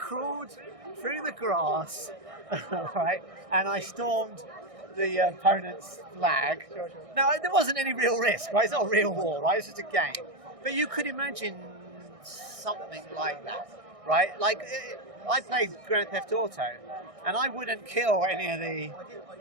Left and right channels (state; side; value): late; left; 1.6 ms